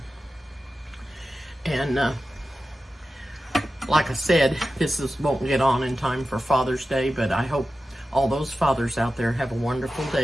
And like I said, won't get on in time for Father's Day, but I hope all those fathers out there have a wonderful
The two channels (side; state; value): both; normal; correlation 0.93